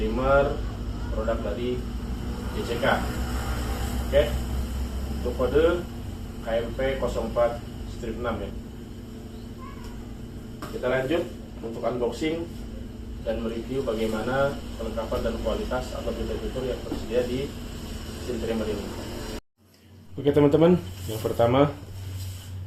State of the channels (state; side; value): identical; both; correlation 1.00